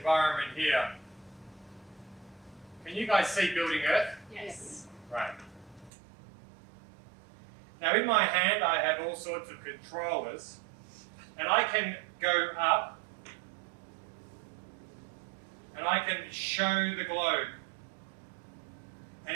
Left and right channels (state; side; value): drops out; left; at 5.9 s